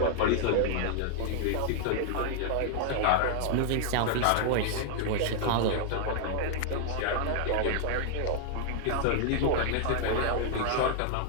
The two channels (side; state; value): both; different; correlation -0.01